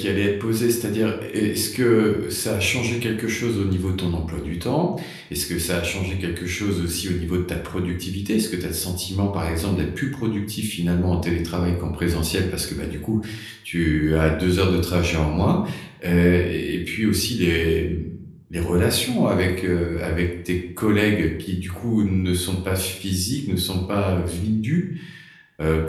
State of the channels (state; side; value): identical; both; correlation 1.00